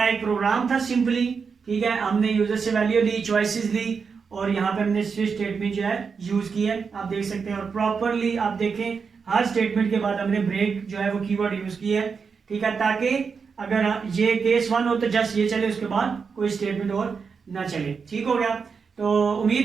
एक प्रोग्राम था सिंपली, ठीक है। हमने यूजर से वैल्यू ली, चॉइसेस ली और यहाँ पे हमने स्विच स्टेटमेंट जो है यूज की है, आप देख सकते हैं। और प्रॉपरली आप देखें हर स्टेटमेंट के बाद हमने ब्रेक जो है वो कीवर्ड यूज किया है, ठीक है, ताकि अगर ये केस 1 हो तो जस्ट ये चले, उसके बाद कोई स्टेटमेंट और ना चले, ठीक हो गया। तो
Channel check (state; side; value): quieter; left; 5.6 dB